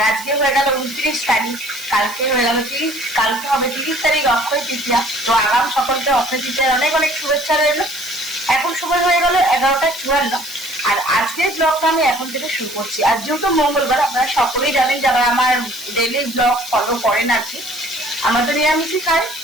আজকে হয়ে গেল 29 তারিখ, কালকে হয়ে গেল 30, কালকে হবে 30 তারিখ অক্ষয় তৃতীয়া। তো আগাম সকলকে অক্ষয় তৃতীয়ার অনেক অনেক শুভেচ্ছা রইল। এখন সময় হয়ে গেল 11টা 54, আর আজকের ব্লগটা আমি এখন থেকে শুরু করছি। আর যেহেতু মঙ্গলবার, আপনারা সকলেই জানেন যারা আমার ডেইলি ব্লগ ফলো করেন আর কি, আমরা তো নিরামিষই খাই।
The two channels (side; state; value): right; noise; hiss, 14 dB below the sound